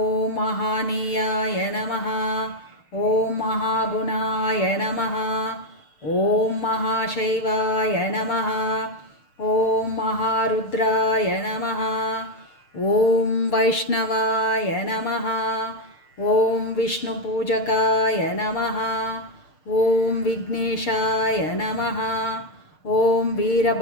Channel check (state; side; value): late; right; 6.6 ms